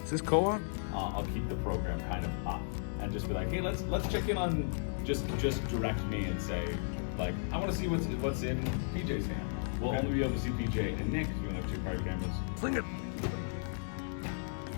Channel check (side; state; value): right; silent; digital silence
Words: Is this co-op? I'll keep the program kind of up and just be like, hey, let's check in on just direct me and say, like, I want to see what's in PJ's hand. We'll only be able to see PJ and Nick. You don't have 2 private cameras. Fling it.